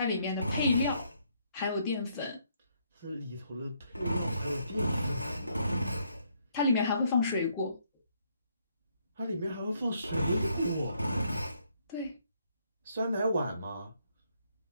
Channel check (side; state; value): both; inverted; correlation -0.71